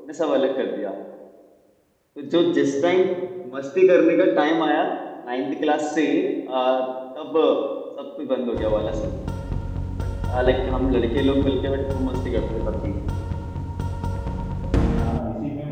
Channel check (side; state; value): both; identical; correlation 1.00